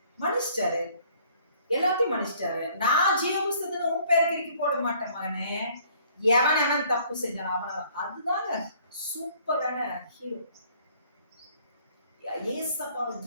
மன்னிச்சிட்டாரு, எல்லாத்தையும் மன்னிச்சிட்டாரு. நான் ஜீவ புஸ்தகத்துல உன் பேர் கிறுக்கி போட மாட்டேன் மகனே. எவன் தப்பு செஞ்சான் அவன. அதுதாங்க சூப்பரான ஹீரோ. ஏசப்பாவை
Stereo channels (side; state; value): both; inverted; correlation -0.59